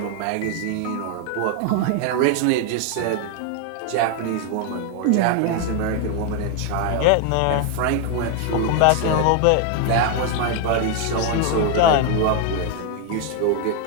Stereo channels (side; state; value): both; different; correlation 0.01